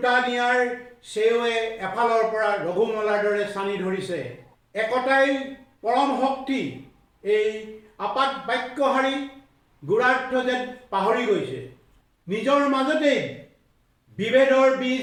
নিয়াৰ চেৱে এফালৰ পৰা ৰঘুমলাৰ দৰে চানি ধৰিছে। একতাই পৰম শক্তি এই আপাত বাক্যহাৰী গুৰাৰ্থ যেন পাহৰি গৈছে। নিজৰ মাজতেই বিভেদৰ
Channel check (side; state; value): both; identical; correlation 1.00